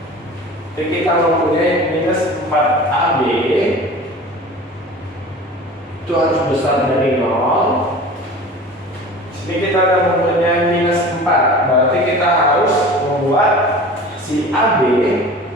jadi kita mempunyai minus 4AB. itu harus besar dari 0. Sini kita akan mempunyai minus 4. Berarti kita harus membuat si AB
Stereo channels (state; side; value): normal; both; correlation 0.39